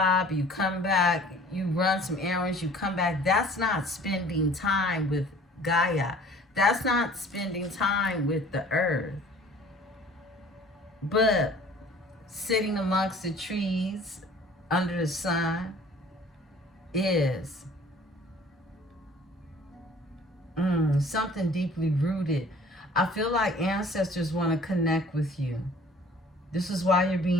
you come back, you run some errands, you come back, that's not spending time with Gaia. That's not spending time with the earth. But sitting amongst the trees under the sun is something deeply rooted. I feel like ancestors want to connect with you. This is why you're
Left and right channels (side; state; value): both; normal; correlation 0.50